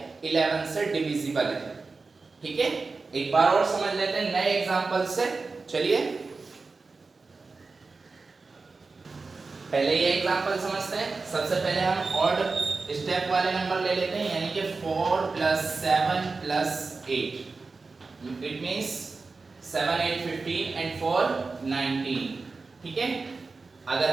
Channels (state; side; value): quieter; left; 4.1 dB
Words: 11 से डिविजिबल है। ठीक है, एक बार और समझ लेते हैं नए एग्जांपल से। चलिए पहले ये एग्जांपल समझते हैं। सबसे पहले हम ऑड स्टेप वाले नंबर ले लेते हैं, यानी कि 4 plus 7 plus 8, it means 7 8 15 and 4 19। ठीक है, अगर